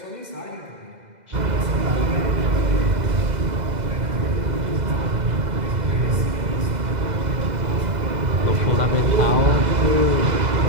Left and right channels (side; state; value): left; late; 2.0 ms